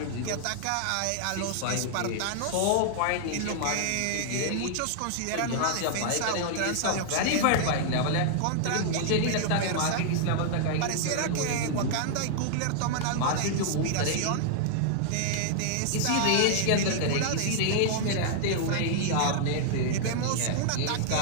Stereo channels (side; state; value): both; different; correlation -0.01